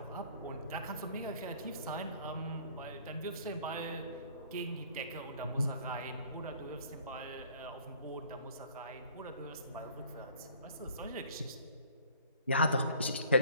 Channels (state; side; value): inverted; both; correlation -0.54